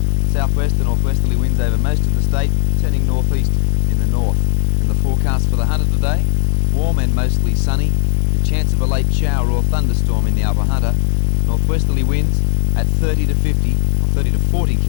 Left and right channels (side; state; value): right; silent; 69 dB below the other